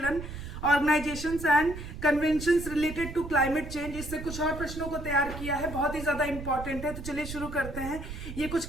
organisations and conventions related to climate change, इससे कुछ और प्रश्नों को तैयार किया है। बहुत ही ज्यादा इंपॉर्टेंट है, तो चलिए शुरू करते हैं। ये कुछ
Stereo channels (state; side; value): noise; right; rumble, 9 dB below the sound